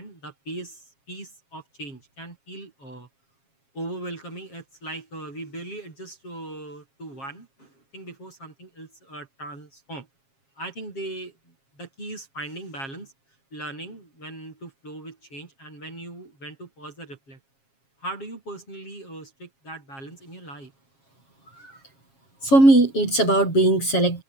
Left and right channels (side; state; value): right; late; 7.4 ms